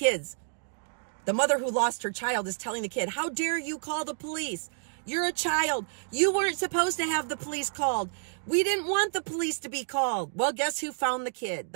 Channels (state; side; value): silent; left; digital silence